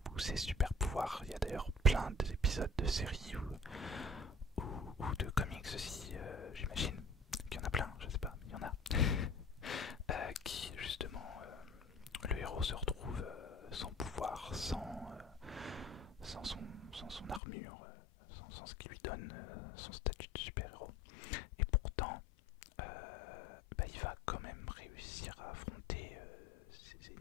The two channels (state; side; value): drops out; right; at 17.4 s